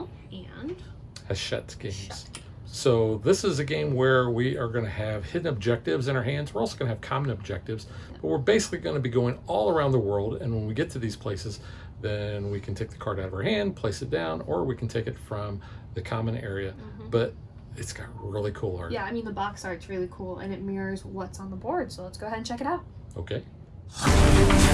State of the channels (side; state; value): both; identical; correlation 1.00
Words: and Hachette Games. So this is a game where we are going to have hidden objectives in our hands. We're also going to have common objectives, but we're basically going to be going all around the world. And when we get to these places, then we can take the card out of our hand, place it down, or we can take it from the common area. But it's got really cool art. Yeah, I mean the box art's really cool and it mirrors what's on the board. So let's go ahead and check it out. Okay.